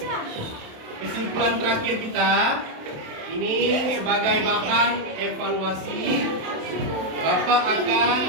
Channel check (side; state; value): left; late; 27 ms